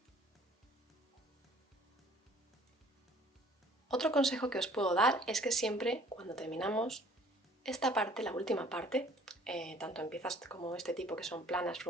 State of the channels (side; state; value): both; normal; correlation 0.55